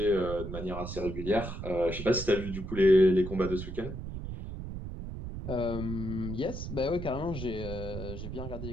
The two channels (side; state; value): right; noise; rumble, 7 dB below the sound